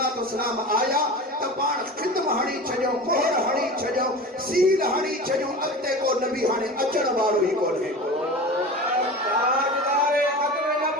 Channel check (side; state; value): both; normal; correlation 0.33